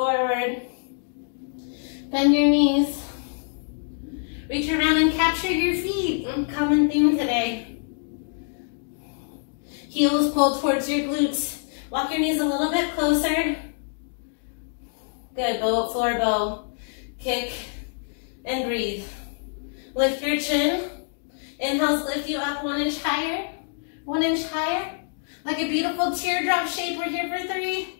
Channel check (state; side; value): silent; right; digital silence